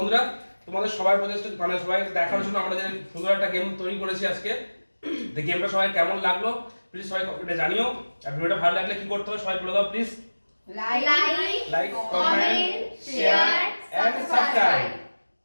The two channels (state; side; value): inverted; both; correlation -1.00